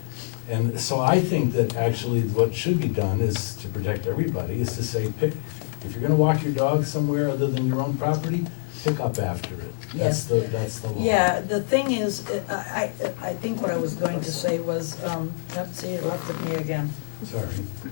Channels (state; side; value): silent; right; digital silence